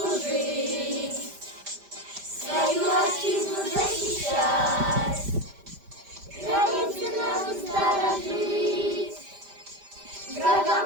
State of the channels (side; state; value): left; late; 5.0 ms